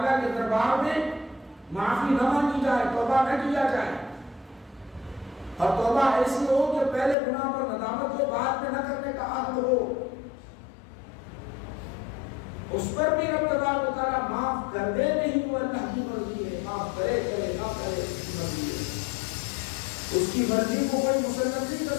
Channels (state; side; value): drops out; right; at 7.2 s